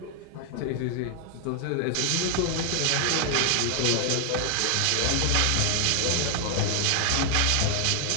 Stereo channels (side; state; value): both; different; correlation 0.00